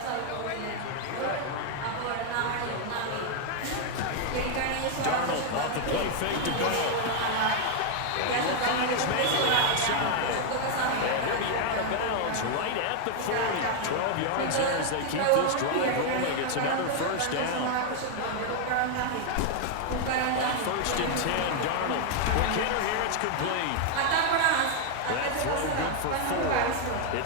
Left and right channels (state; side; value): different; both; correlation 0.00